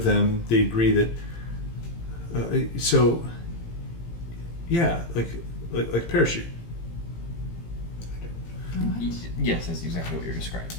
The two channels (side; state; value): right; late; 18 ms